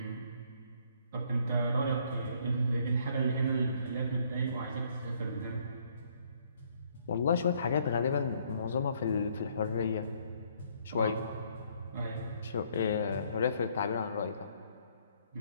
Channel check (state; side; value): inverted; both; correlation -0.65